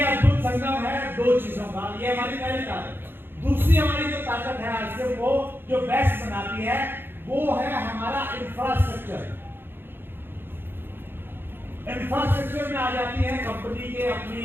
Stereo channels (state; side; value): late; left; 0.10 ms